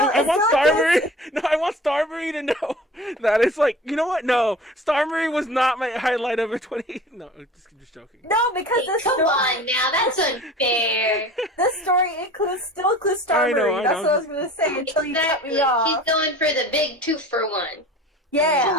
Marie. No, I want Star Marie to know that it's like, you know what? No, Star Marie was not my highlight of a 20. No, just joking. No, because this Come on now, that's unfair. This story still includes Star Marie. That's what I was gonna say until you cut me off. She's going for the big 2-for-1. Yeah.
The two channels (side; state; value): both; normal; correlation 0.41